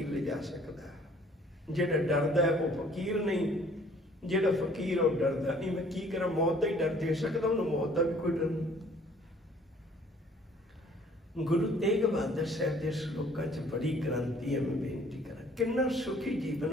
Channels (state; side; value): normal; both; correlation 0.57